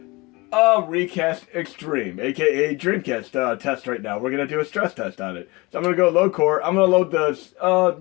recast Xtreme, aka Dreamcast test right now. We're going to do a stress test on it. So I'm going to go load core. I'm going to load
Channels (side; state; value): right; quieter; 24.6 dB